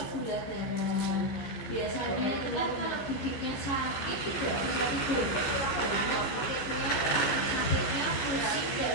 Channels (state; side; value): late; right; 14 ms